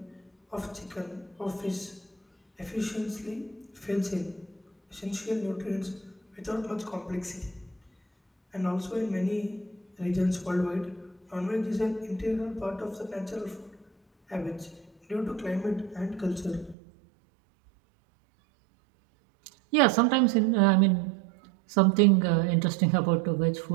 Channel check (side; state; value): left; drops out; at 16.8 s